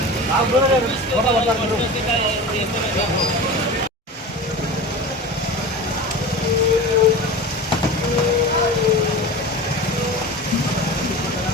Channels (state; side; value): normal; both; correlation 0.32